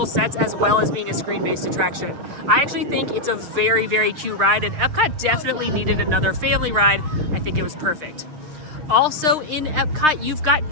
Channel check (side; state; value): left; late; 6.5 ms